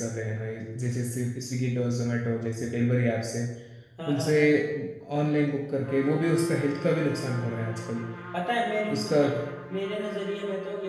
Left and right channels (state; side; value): identical; both; correlation 1.00